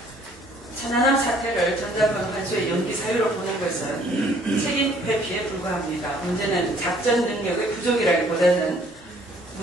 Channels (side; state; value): both; normal; correlation 0.60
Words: 천안함 사태를 전작권 환수의 연기 사유로 보는 것은 책임 회피에 불과합니다. 문제는 작전 능력의 부족이라기보다는